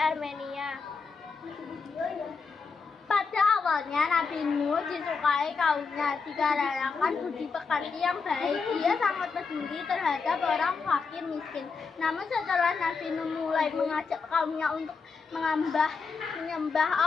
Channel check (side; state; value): right; quieter; 5.0 dB